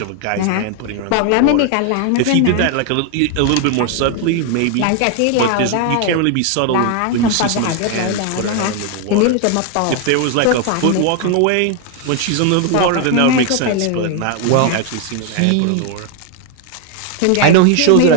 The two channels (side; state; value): both; different; correlation 0.01